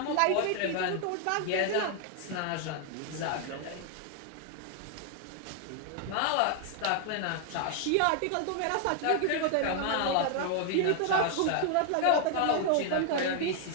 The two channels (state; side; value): different; both; correlation 0.00